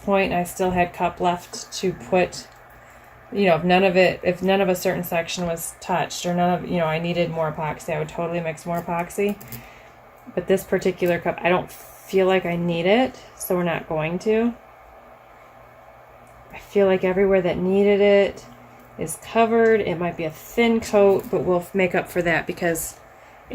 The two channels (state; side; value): identical; both; correlation 1.00